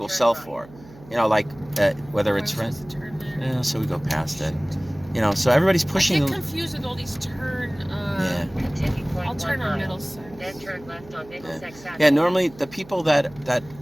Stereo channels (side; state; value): right; noise; hum, 21 dB below the sound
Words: sell for. You know, like whether it's rent. Yeah, so we go past it. You know, so everybody's pushing. I get confused with all these turn. Yeah. I'll turn on Middlesex. Then turn left on Middlesex Avenue. Yeah. Normally, the people that